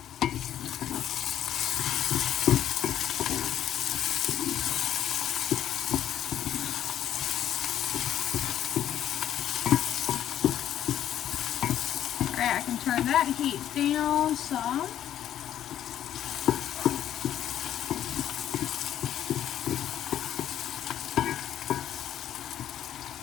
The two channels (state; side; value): quieter; right; 10.9 dB